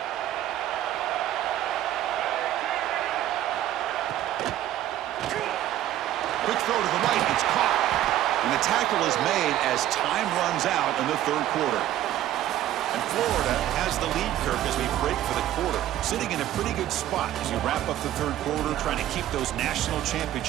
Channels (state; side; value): quieter; left; 12.9 dB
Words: Quick throw to the right. It's caught. And the tackle is made as time runs out in the third quarter. And Florida has the lead, Kirk, as we break for the quarter. Sitting in a pretty good spot as you wrap up the third quarter, trying to keep those national